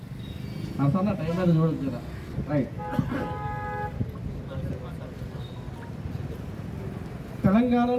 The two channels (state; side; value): identical; both; correlation 1.00